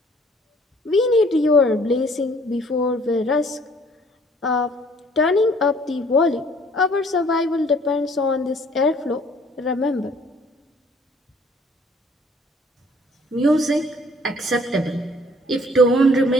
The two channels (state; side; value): normal; both; correlation 0.58